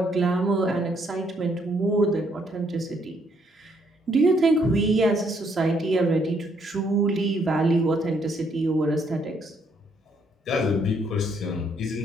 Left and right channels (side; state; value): both; normal; correlation 0.70